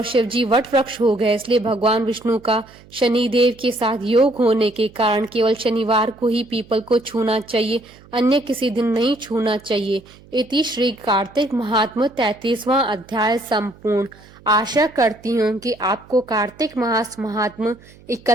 शिव जी वट वृक्ष हो गए। इसलिए भगवान विष्णु का शनिदेव के साथ योग होने के कारण केवल शनिवार को ही पीपल को छूना चाहिए, अन्य किसी दिन नहीं छूना चाहिए। इति श्री कार्तिक महात्म्य 33वां अध्याय संपूर्ण। आशा करती हूँ कि आपको कार्तिक मास महात्म्य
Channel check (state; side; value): noise; right; hum, 24 dB below the sound